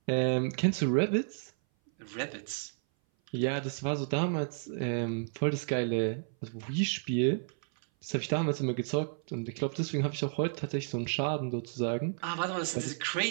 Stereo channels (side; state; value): left; silent; 56 dB below the other